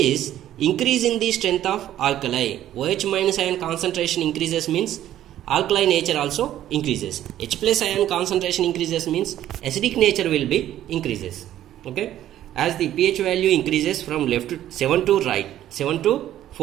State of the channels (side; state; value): left; quieter; 12.4 dB